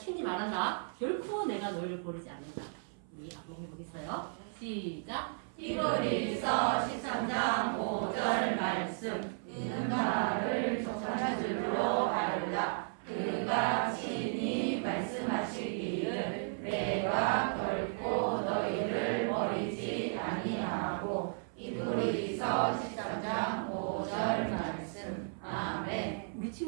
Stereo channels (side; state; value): left; silent; 55 dB below the other